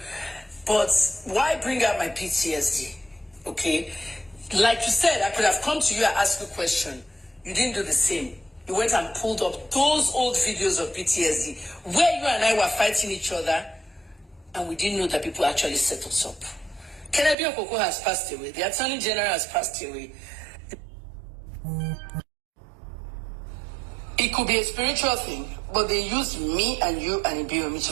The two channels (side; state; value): left; drops out; at 17.4 s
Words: but why bring up my PTSD? Okay, like you said, I could have come to you and asked you a question. You didn't do the same. You went and pulled up those old videos of PTSD where you and I were fighting each other, and we didn't know that people actually set us up. Kennedy Okoko has passed away. The Attorney General has passed away. It could be a spiritual thing, but they used me and you and Ibiomi